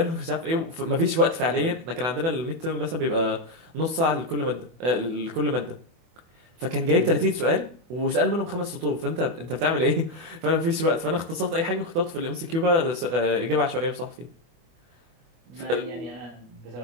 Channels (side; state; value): left; late; 24 ms